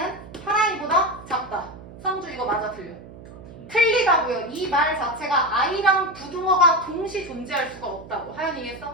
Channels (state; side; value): noise; right; hum, 17 dB below the sound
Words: 8i보다 작다. 성주 이거 맞아 틀려? 틀리다고요. 이 말 자체가 i랑 부등어가 동시 존재할 수가 없다고. 하연이